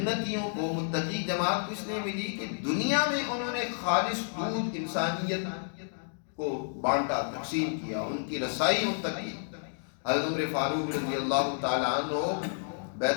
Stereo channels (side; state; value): right; silent; digital silence